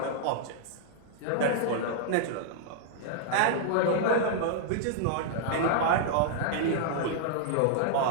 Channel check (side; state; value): both; different; correlation -0.01